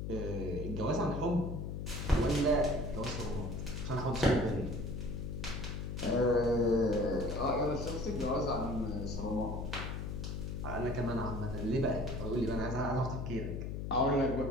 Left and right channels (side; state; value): left; noise; hum, 4 dB below the sound